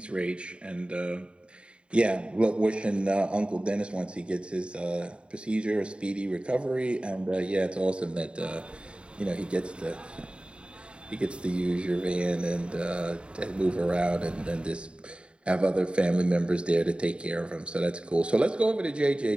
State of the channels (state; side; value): late; left; 0.055 ms